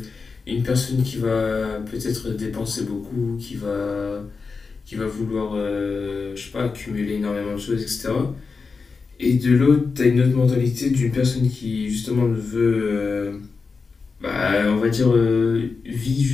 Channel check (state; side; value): quieter; right; 4.7 dB